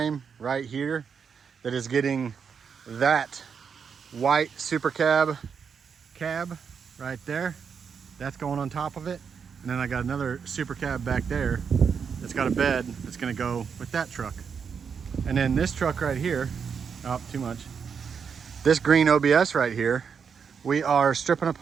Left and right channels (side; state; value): left; quieter; 6.5 dB